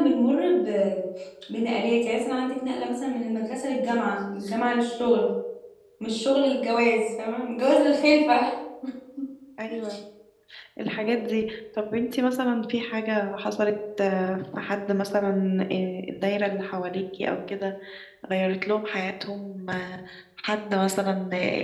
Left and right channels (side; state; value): both; identical; correlation 1.00